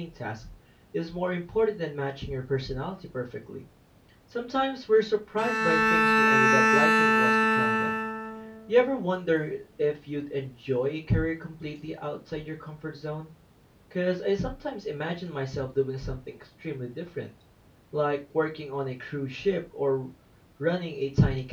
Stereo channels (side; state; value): both; identical; correlation 1.00